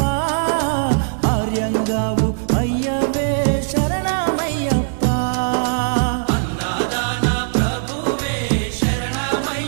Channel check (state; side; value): silent; left; 61 dB below the other